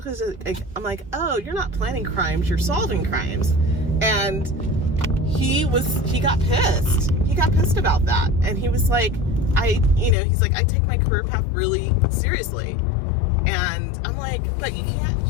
is, I'm like, oh, you're not planning crimes, you're solving crimes. And he got pissed. He got pissed about that. And he was like, he's like, I take my career path really seriously. And I'm like, but you can't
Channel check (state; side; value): drops out; right; at 10.2 s